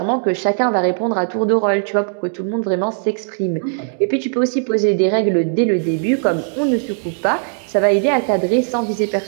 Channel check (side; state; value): left; silent; digital silence